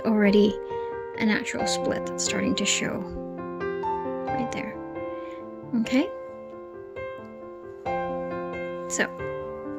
already a natural split that's starting to show right there. Okay, so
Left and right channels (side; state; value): both; identical; correlation 1.00